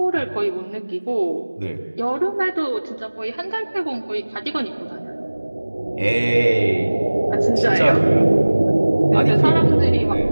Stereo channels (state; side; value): inverted; both; correlation -1.00